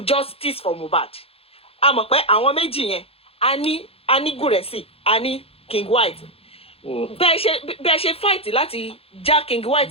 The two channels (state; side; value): late; right; 0.28 ms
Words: justice for Mohbad a mọ̀ pé àwọn méjì yẹn a ní Gúrẹ́sì a ní King White bẹ́ẹ̀ ṣe fight láti já King